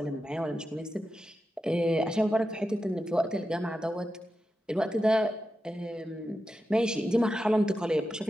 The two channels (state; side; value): normal; both; correlation 0.90